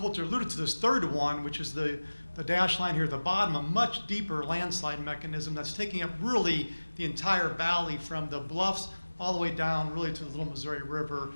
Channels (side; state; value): both; inverted; correlation -1.00